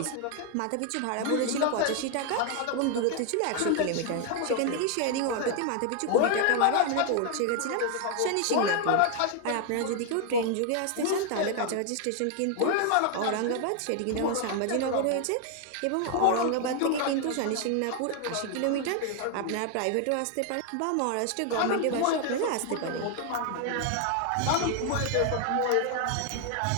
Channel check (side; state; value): both; different; correlation 0.00